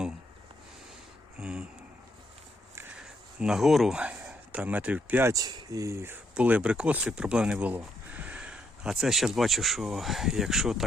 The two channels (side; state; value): both; normal; correlation 0.75